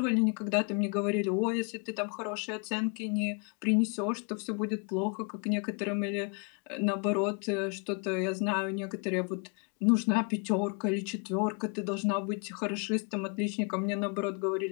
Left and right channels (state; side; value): quieter; right; 35.6 dB